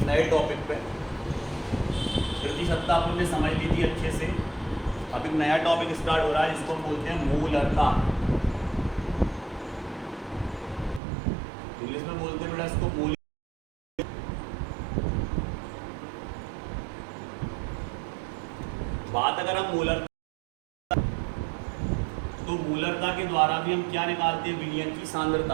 नए टॉपिक पे। प्रतिशतता अपन ने समझ ली थी अच्छे से। अब एक नया टॉपिक स्टार्ट हो रहा है जिसको हम बोलते हैं मूलरता। इंग्लिश में बोलते हैं बेटा इसको मूल। बात अगर हम मूलरता, तो मूलरता के द्वारा भी हम क्या निकालते हैं? विलयन की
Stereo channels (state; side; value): drops out; left; at 11.0 s